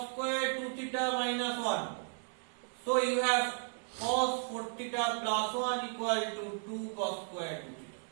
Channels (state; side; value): silent; left; 55 dB below the other